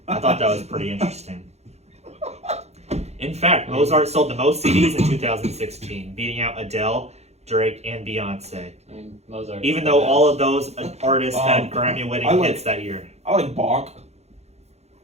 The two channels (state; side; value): late; left; 0.31 ms